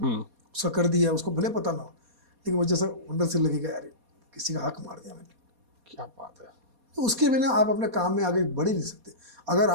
उसका कर दिया, उसको भले पता ना हो, लेकिन मुझे ऐसा अंदर से लगेगा यार किसी का हक मार दिया मैंने। क्या बात है। तो उसके बिना आप अपने काम में आगे बढ़ ही नहीं सकते। अगर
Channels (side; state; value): left; late; 4.2 ms